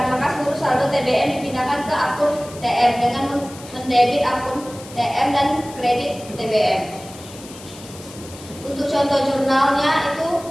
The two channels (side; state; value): left; noise; hiss, 18 dB below the sound